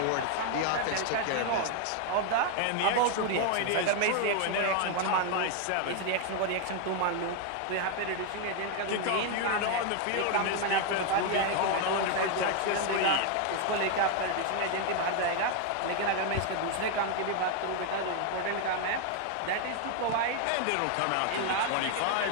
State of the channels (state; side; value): different; both; correlation 0.01